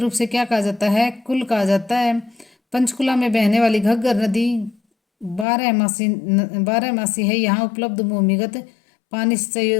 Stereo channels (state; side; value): drops out; right; at 5.5 s